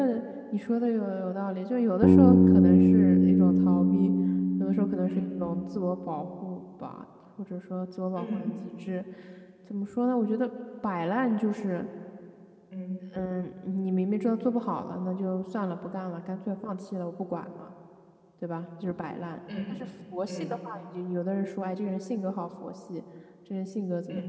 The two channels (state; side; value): identical; both; correlation 1.00